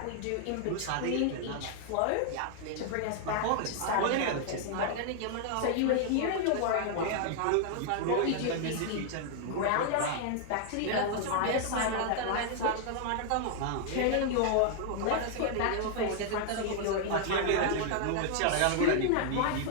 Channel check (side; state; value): both; different; correlation 0.00